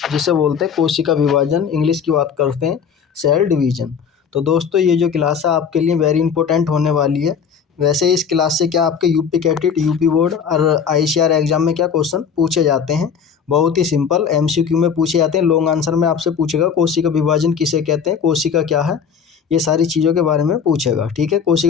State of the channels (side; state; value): right; quieter; 6.9 dB